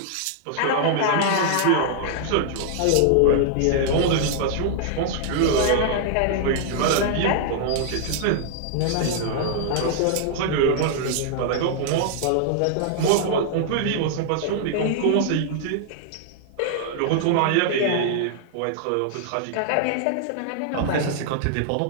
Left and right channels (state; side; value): different; both; correlation -0.01